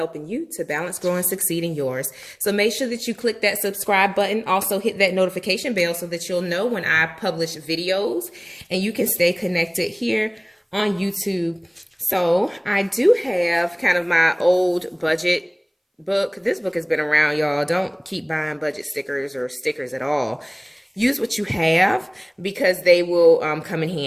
you to balance, grow, and succeed in yours. So make sure that you click that subscribe button. Also hit that notification bell so that you'll know when I publish videos and you can stay connected here on YouTube. So I do have kind of my old budget book. This book has been around, y'all. Don't keep buying budget stickers or stickers at all. Use what you have because they will come in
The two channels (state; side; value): identical; both; correlation 1.00